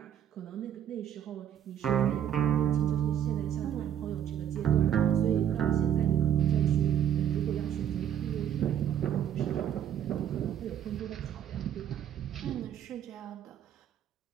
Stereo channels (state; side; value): quieter; left; 9.8 dB